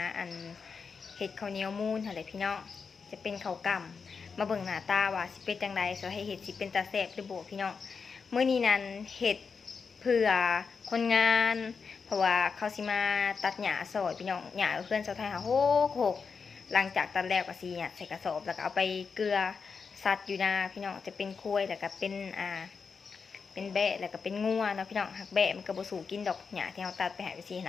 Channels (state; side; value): quieter; right; 5.4 dB